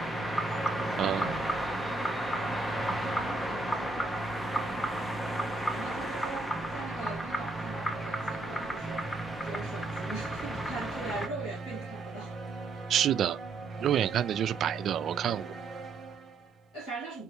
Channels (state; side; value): quieter; left; 3.6 dB